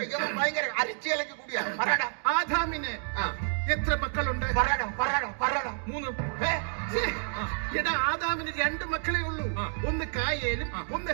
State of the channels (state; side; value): silent; left; digital silence